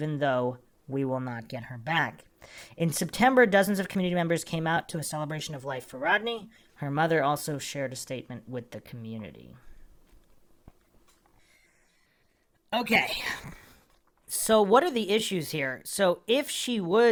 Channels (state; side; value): identical; both; correlation 1.00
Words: though we will not get her back. In September, dozens of community members came out to a celebration of life for Rodni. Her mother also shared a statement with the community. Okay, so what are the issues here? So if she